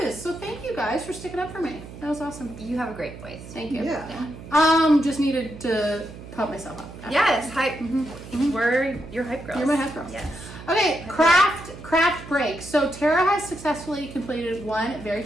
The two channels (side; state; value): right; noise; hum, 14 dB below the sound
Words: So thank you guys for sticking up for me. That was awesome. You have a great voice. Thank you. Yeah. Just needed to pump myself up. Yes, hype. We're your hype girls. You're my hype girls. Yes. Okay, craft break. So Tara has successfully completed 1 very